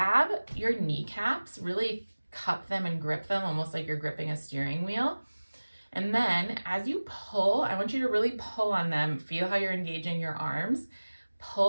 your kneecaps, really cup them and grip them almost like you're gripping a steering wheel. And then as you pull, I want you to really pull on them. Feel how you're engaging your arms.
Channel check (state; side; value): inverted; both; correlation -1.00